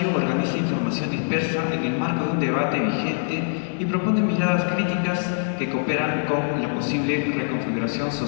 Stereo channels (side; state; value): right; silent; digital silence